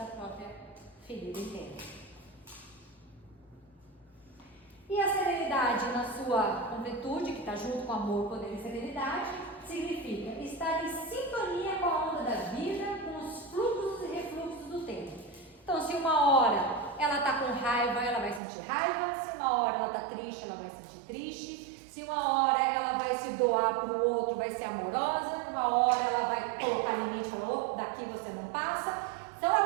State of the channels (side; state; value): left; drops out; at 18.4 s